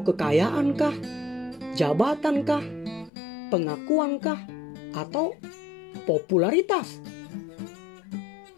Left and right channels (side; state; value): right; drops out; at 3.1 s